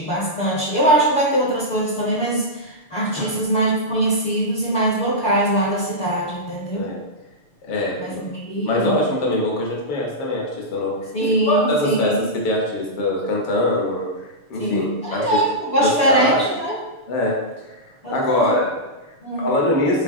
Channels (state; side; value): late; right; 6.8 ms